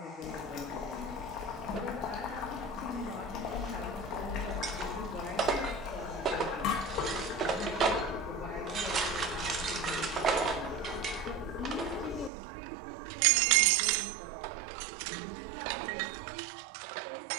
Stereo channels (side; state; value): left; drops out; at 12.3 s